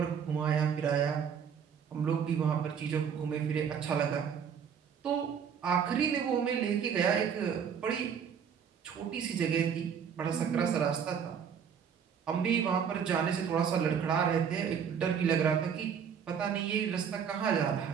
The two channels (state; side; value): quieter; left; 7.4 dB